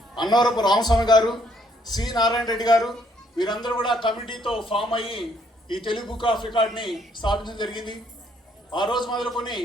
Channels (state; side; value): normal; both; correlation 0.68